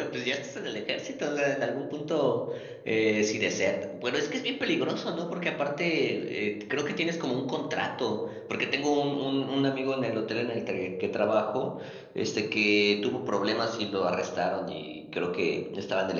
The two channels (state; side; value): identical; both; correlation 1.00